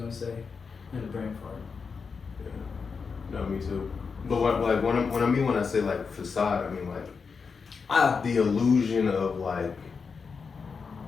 say. In the brain fart. Yeah. No, me too. But when I say like facade, I mean like the illusion of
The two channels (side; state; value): right; quieter; 5.3 dB